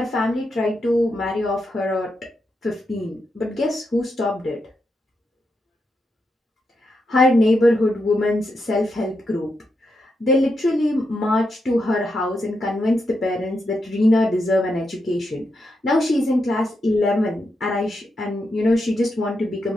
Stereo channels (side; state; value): both; normal; correlation 0.84